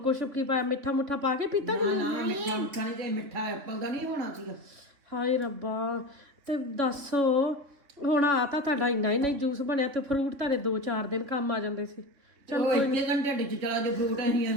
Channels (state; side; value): late; left; 3.4 ms